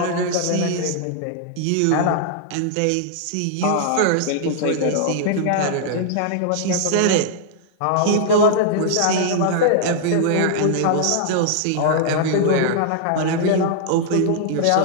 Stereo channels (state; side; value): different; both; correlation -0.01